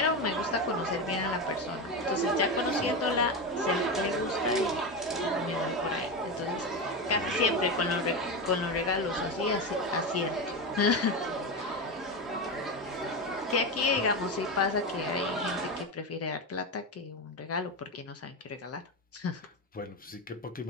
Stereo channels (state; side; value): normal; both; correlation 0.17